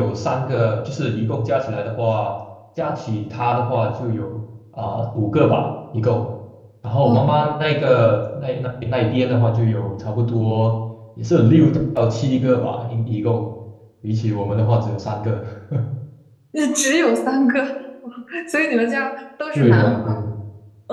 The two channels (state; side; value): identical; both; correlation 1.00